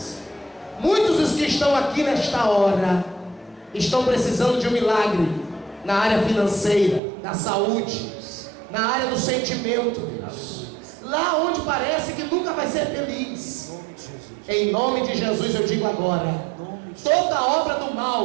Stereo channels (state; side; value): drops out; left; at 7.0 s